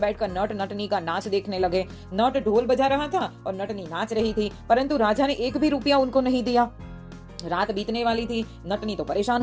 नट नटनी का नाच देखने लगे। नट ढोल बजा रहा था और नटनी नाच रही थी, परंतु राजा ने एक भी रुपया उनको नहीं दिया। रात बीतने वाली थी, नटनी तो परेशान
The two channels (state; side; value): identical; both; correlation 1.00